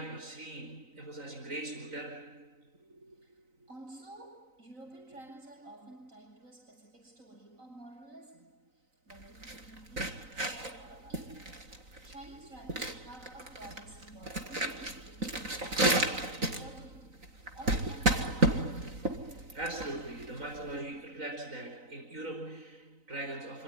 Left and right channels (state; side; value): late; left; 3.9 ms